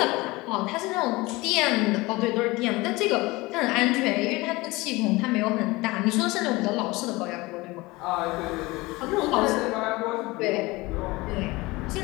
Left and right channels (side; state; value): right; quieter; 22.0 dB